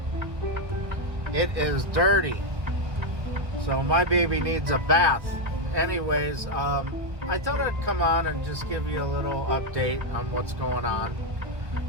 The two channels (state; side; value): late; left; 1.1 ms